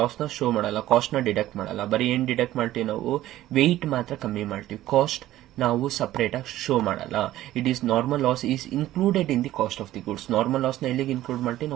ಮಾಡಲ್ಲ, ಕಾಸ್ಟ್ ನ ಡಿಡಕ್ಟ್ ಮಾಡಲ್ಲ. ಬರೀ ಏನ್ ಡಿಡಕ್ಟ್ ಮಾಡ್ತೀವಿ ನಾವು, ವೆಯ್ಟ್ ಮಾತ್ರ ಕಮ್ಮಿ ಮಾಡ್ತೀವಿ, ಕಾಸ್ಟ್ ನಾವು ಸಪರೇಟ್ ಆಗಿ ಶೋ ಮಾಡಲ್ಲ. It is normal loss is included in the cost of the goods. Normal loss ನ ಎಲ್ಲಿಗೆ ಇನ್ಕ್ಲೂಡ್ ಮಾಡ್ತೀವಿ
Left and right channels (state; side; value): quieter; left; 14.5 dB